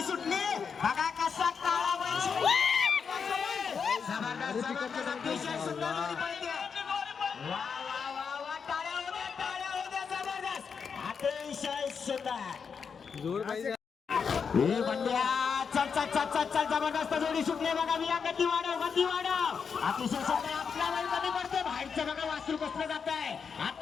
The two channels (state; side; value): quieter; right; 6.1 dB